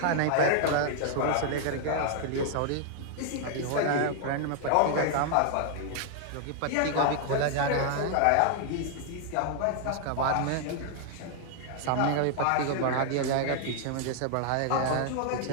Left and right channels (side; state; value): both; different; correlation 0.00